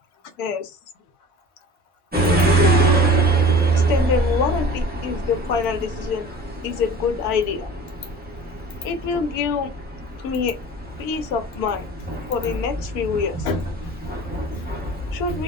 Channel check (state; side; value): normal; both; correlation 0.40